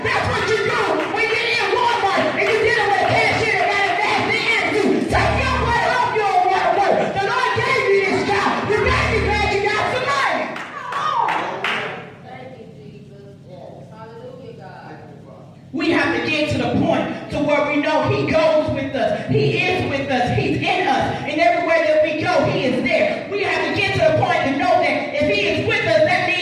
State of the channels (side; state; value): both; identical; correlation 1.00